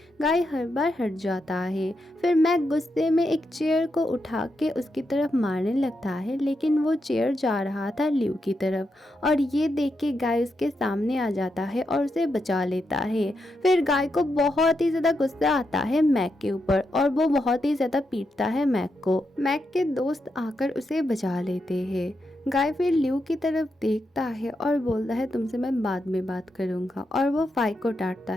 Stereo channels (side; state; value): both; normal; correlation 0.84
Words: गाय हर बार हट जाता है। फिर मैक गुस्से में एक चेयर को उठा के उसकी तरफ मारने लगता है, लेकिन वो चेयर जा रहा था ल्यू की तरफ और ये देख के गाय उसके सामने आ जाता है और उसे बचा लेता है। फिर गाय को बहुत ही ज्यादा गुस्सा आता है मैक के ऊपर और वो बहुत ही ज्यादा पीटता है मैक को। मैक के दोस्त आकर उसे बचा लेते हैं। गाय फिर ल्यू की तरफ देखता है और बोलता है तुमसे मैं बाद में बात करूंगा, और वो फाई को डांटता